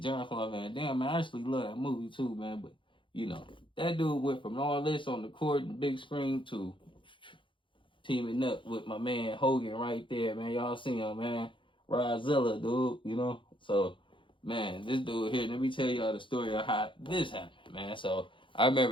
John Claude Van Damme, man. I actually love that movie, too, man. But, that dude went from all this on the court and big screen to teaming up with my man Hogan right there, man. Y'all see him, man. Rodzilla, dude, So, man, this dude here, let me tell y'all the story of how this happened, man. So, I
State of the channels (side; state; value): right; late; 0.24 ms